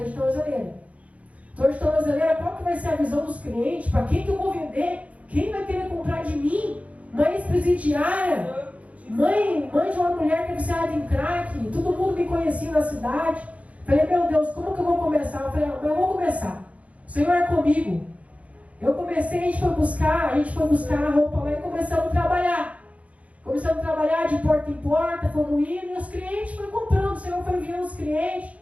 de tornozeleira. Estou de tornozeleira, qual que vai ser a visão dos clientes? Para quem que eu vou vender? Quem vai querer comprar de mim? Mãe ex-presidiária, mãe de uma mulher que é viciada em crack, todo mundo me conhecia na cidade. Falei, meu Deus, como que eu vou começar? Eu falei, eu vou começar. O Senhor é comigo. Eu comecei, a gente foi buscar a roupa lá e começamos a trabalhar. Começamos a trabalhar de porta em porta, fomos indo, e os clientes foram comprando. O Senhor foi enviando os clientes.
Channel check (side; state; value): left; late; 0.067 ms